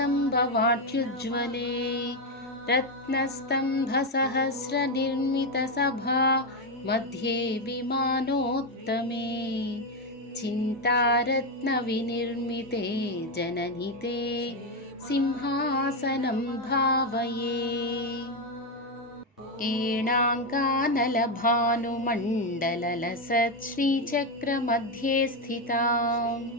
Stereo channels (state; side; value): normal; both; correlation 0.07